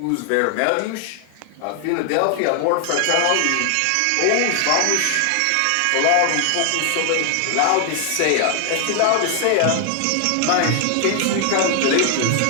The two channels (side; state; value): both; different; correlation 0.00